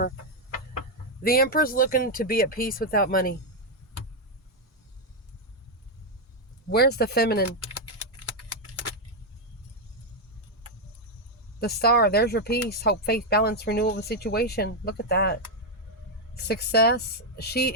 The Emperor's looking to be at peace without money. Where's the feminine? The Star. There's your peace. Hope, faith, balance, renewal of a situation. Look at that. Success. She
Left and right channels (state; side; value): normal; both; correlation 0.01